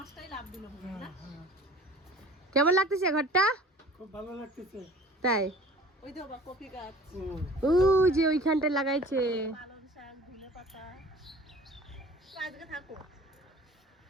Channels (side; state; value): both; normal; correlation 0.46